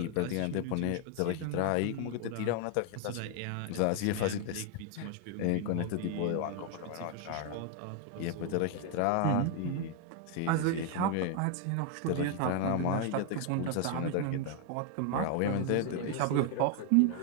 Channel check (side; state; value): both; different; correlation 0.00